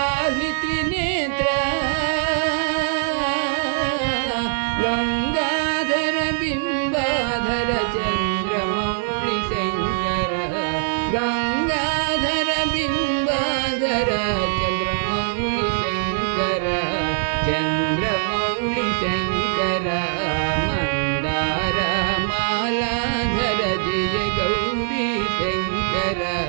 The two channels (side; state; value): left; silent; digital silence